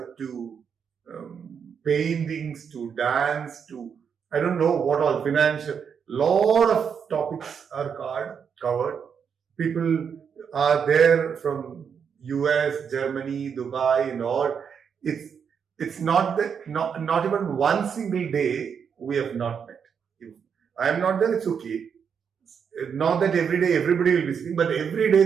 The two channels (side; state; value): left; quieter; 7.0 dB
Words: to paintings to dance to I don't know what all financial. Lot of topics are covered. People are there from US, Germany, Dubai, and all. It's not that not even one single day we have not met. If I am not there, it's okay. Not that every day everybody will be speaking, but every day